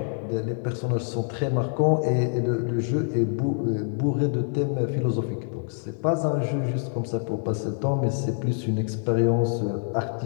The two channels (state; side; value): silent; right; 61 dB below the other